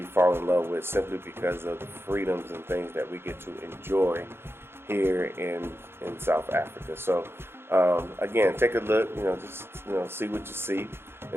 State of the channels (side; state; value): left; late; 0.11 ms